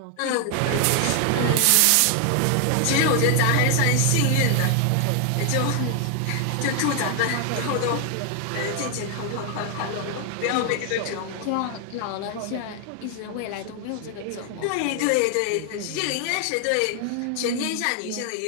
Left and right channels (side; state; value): both; different; correlation 0.00